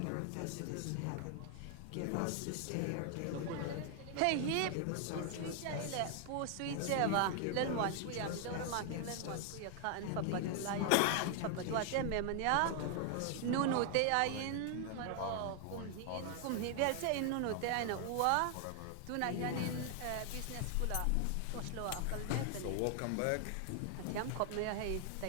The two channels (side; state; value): both; different; correlation 0.00